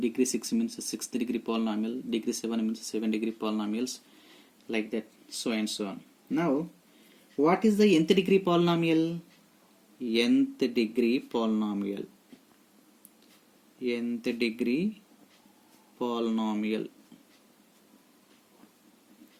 6 means sixth degree polynomial, degree 7 means 7 degree polynomials, like that, so and so on. Now, what is the nth degree polynomial? Nth degree polynomial. Nth degree polynomial.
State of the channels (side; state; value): both; identical; correlation 1.00